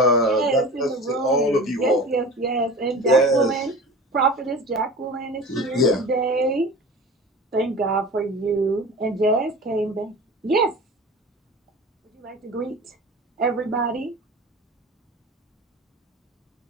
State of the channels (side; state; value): both; normal; correlation 0.36